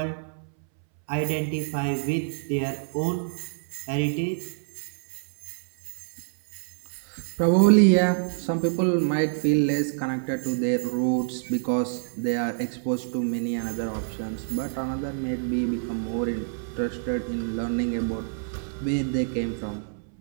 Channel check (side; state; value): left; silent; 60 dB below the other